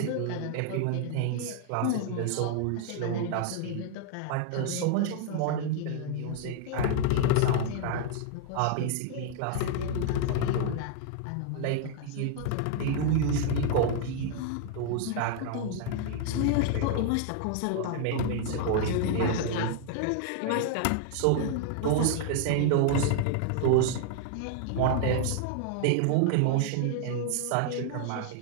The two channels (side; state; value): both; different; correlation 0.00